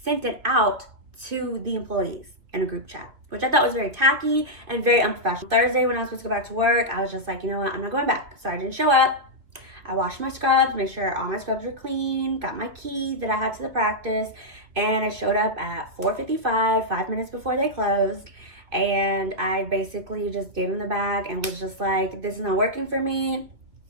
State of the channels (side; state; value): left; late; 2.6 ms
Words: sent it out to the employees in a group chat, which I thought was very tacky and very unprofessional. Thursday, when I was supposed to go back to work, I was just like, you know what, I'm not going back. So I didn't show up. I washed my scrubs, made sure all my scrubs were clean, got my keys that I had to the practice, and I showed up at 4:55, 5 minutes before they closed. And I basically just gave him the bag and was just like, this is not working for me.